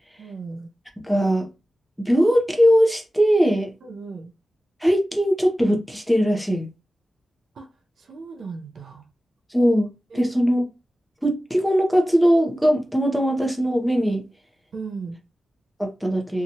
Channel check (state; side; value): normal; both; correlation 0.95